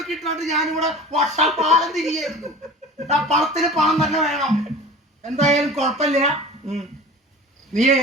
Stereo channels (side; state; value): both; normal; correlation 0.38